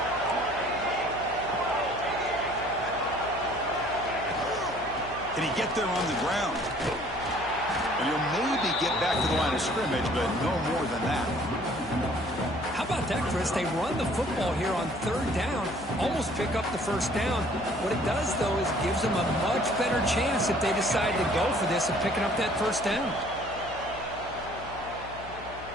Can he get there on the ground? And he'll maybe get back to the line of scrimmage, but no more than that. How about that, Chris? They run the football here on third down, almost pick up the first down. What it does, though, is gives them a much better chance if they decide to go for this of picking up that first down.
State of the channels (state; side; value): noise; left; hum, 15 dB below the sound